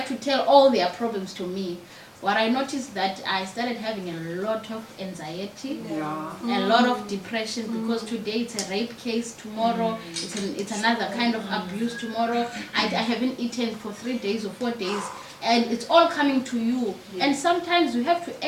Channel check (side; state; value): both; identical; correlation 1.00